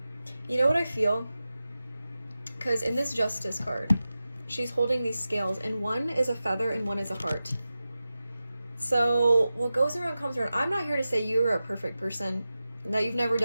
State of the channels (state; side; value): inverted; both; correlation -0.94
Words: You know what I feel? Because in this Justice card, she's holding these scales, and one is a feather and one is a heart. So what goes around comes around. I'm not here to say you are a perfect person, that you've never